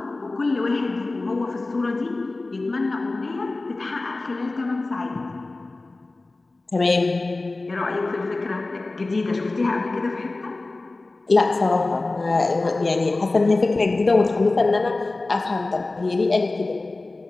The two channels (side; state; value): right; quieter; 3.2 dB